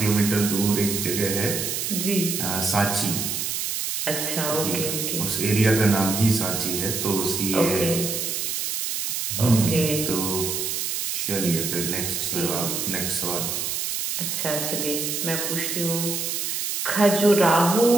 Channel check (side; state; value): right; noise; hiss, 2 dB below the sound